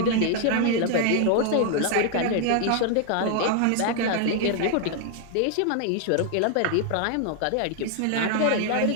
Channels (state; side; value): different; both; correlation 0.00